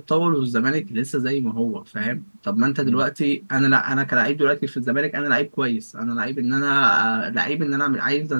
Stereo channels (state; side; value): inverted; both; correlation -1.00